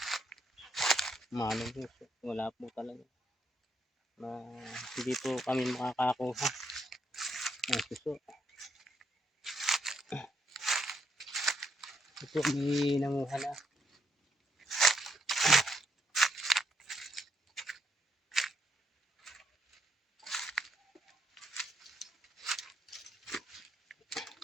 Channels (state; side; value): normal; both; correlation 0.77